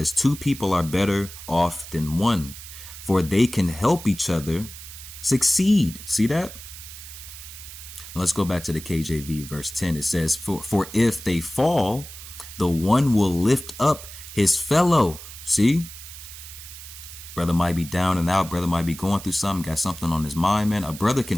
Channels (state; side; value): noise; right; hiss, 14 dB below the sound